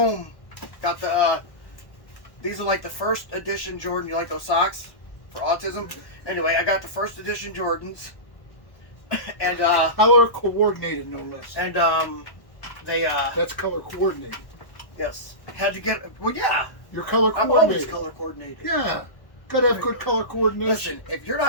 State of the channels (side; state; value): right; late; 1.1 ms